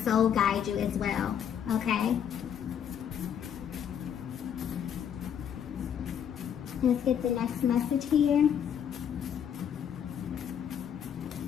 guide you as well, okay? Let's get the next message here.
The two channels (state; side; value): quieter; right; 8.8 dB